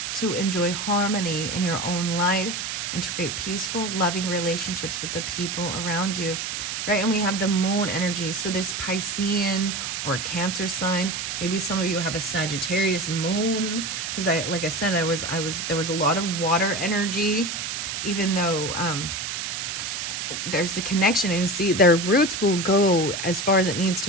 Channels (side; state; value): right; noise; hiss, 4 dB below the sound